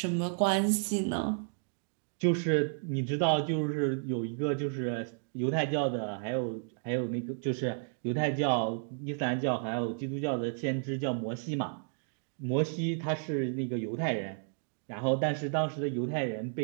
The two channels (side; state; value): left; silent; digital silence